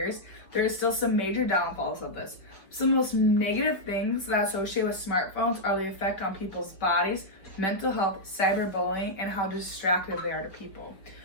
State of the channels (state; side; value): late; right; 5.0 ms